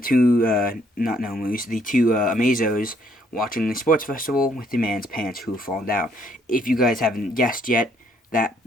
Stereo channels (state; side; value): normal; both; correlation 0.67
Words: two, not Nomus, the two Amazos watching the sports festival with the man's pants who have fallen down. If you guys haven't guessed yet, that